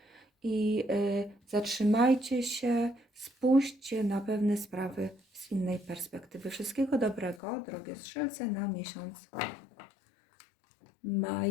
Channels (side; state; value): right; drops out; at 7.4 s